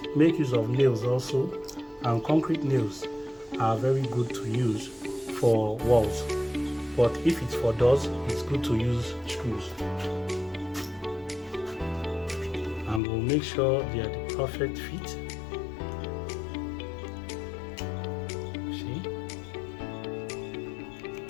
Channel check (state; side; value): drops out; right; at 13.0 s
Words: make use of nails also, and concrete nails are very good to use for walls. But if it's for doors, it's good to use screws. And we'll make sure they are the perfect fit.